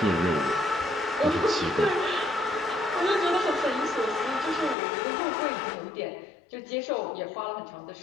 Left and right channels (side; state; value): right; drops out; at 4.8 s